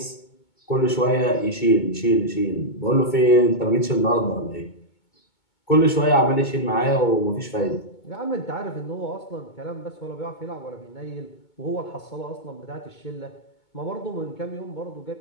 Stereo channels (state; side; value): late; right; 2.2 ms